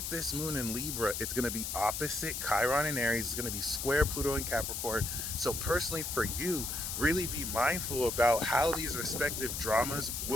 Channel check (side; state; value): left; noise; hiss, 4 dB below the sound